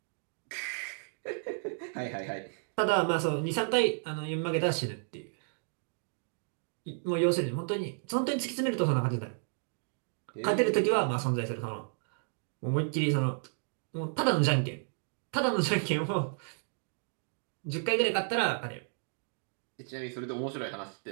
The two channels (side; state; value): left; silent; 56 dB below the other